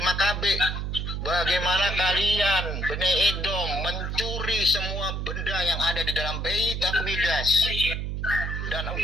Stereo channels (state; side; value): noise; right; hum, 3 dB below the sound